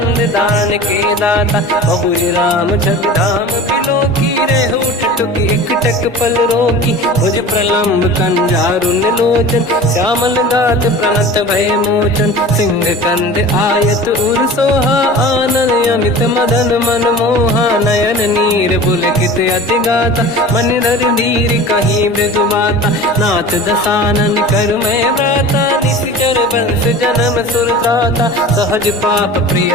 दान के दाता, बहुज राम जग धाम बिलो की, रेहु टुक एक टक पल रोकी, भुज प्रलम्ब कंजारुन लोचन, श्यामल गात प्रणत भय मोचन, सिंह कंद आयत उर सोहा, आनन अमित मदन मन मोहा, नयन नीर पुलकित अति गाता, मन धर धीर कहीं मृदु बाता, नाथ दसानन कर मैं व्राता, निश्चर वंश जन्म सुर त्राता, सहज पाप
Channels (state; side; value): normal; both; correlation 0.38